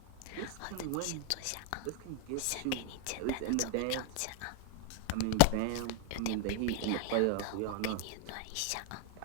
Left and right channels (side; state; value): both; different; correlation 0.01